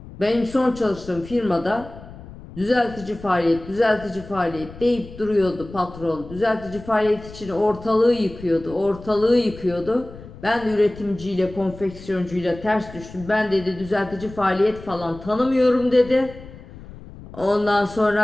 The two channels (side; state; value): left; noise; rumble, 16 dB below the sound